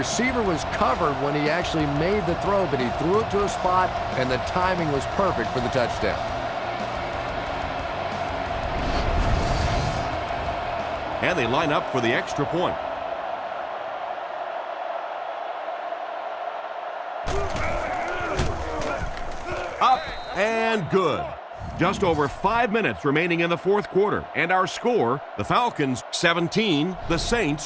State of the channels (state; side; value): identical; both; correlation 1.00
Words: was covered when he actually made the throw, but he threw it to a spot, and the timing was perfect for the touchdown. And they line up for the extra point. Up and good. Just over 5 minutes remaining in the fourth quarter. And our score, the Falcons 17, the